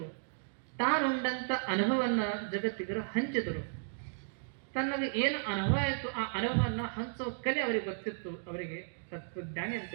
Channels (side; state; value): left; silent; digital silence